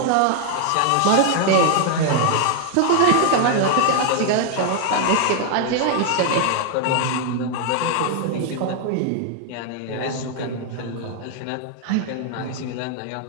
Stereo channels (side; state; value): both; different; correlation 0.00